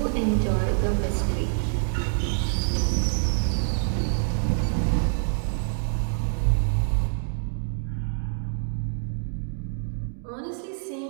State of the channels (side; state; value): left; silent; digital silence